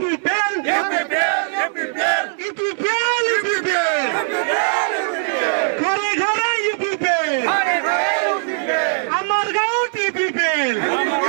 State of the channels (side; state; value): left; silent; digital silence